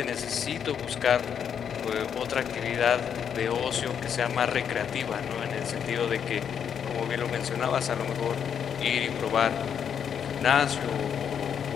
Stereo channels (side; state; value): right; quieter; 7.9 dB